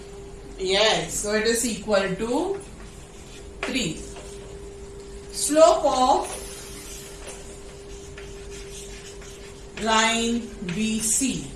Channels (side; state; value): both; identical; correlation 1.00